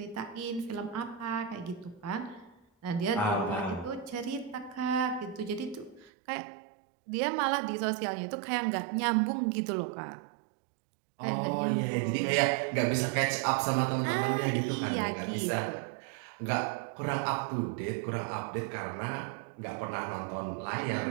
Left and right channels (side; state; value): left; drops out; at 6.1 s